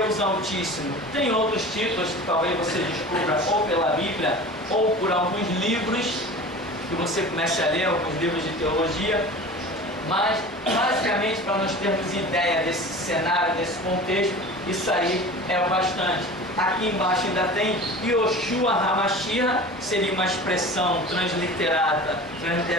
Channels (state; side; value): normal; both; correlation 0.37